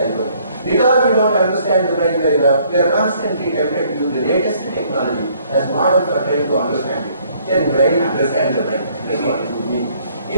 Because we don't understand the brain very well, we are constantly tempted to use the latest technology as model for trying to understand it. Can brain understand the brain? That's what it would mean.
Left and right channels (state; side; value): inverted; both; correlation -0.63